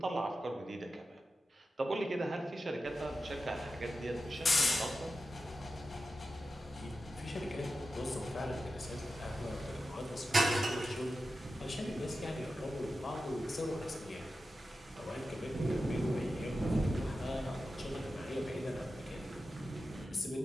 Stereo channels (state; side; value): normal; both; correlation 0.91